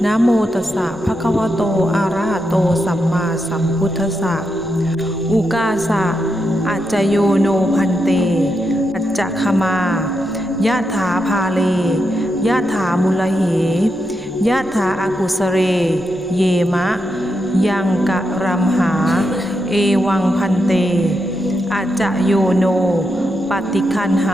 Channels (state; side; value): noise; left; rumble, 26 dB below the sound